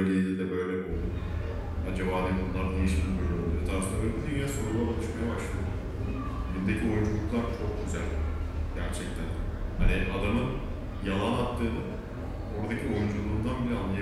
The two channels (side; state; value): both; identical; correlation 1.00